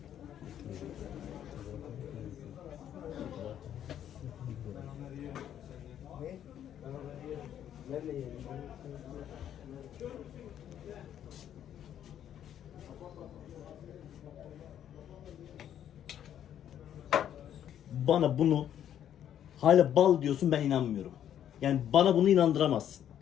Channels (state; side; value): quieter; right; 10.2 dB